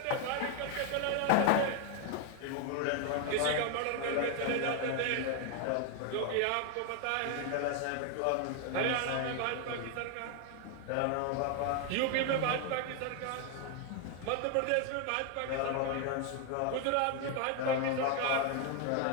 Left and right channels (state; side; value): different; both; correlation 0.01